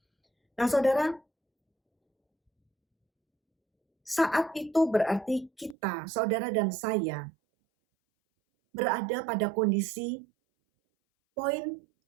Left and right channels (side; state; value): left; drops out; at 5.8 s